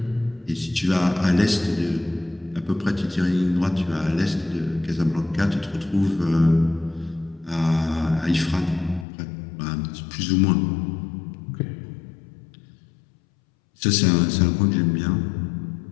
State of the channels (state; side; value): drops out; right; at 9.1 s